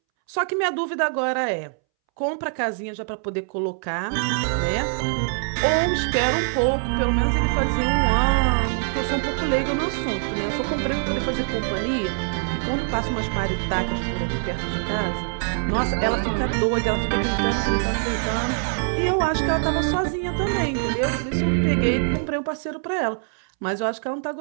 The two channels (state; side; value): silent; left; 63 dB below the other